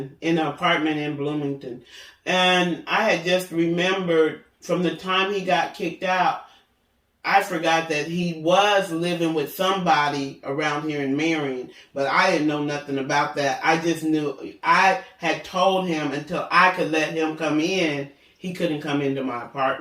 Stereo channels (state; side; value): identical; both; correlation 1.00